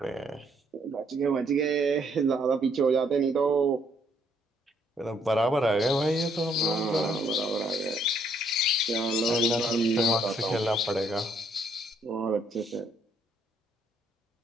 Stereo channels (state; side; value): normal; both; correlation 0.69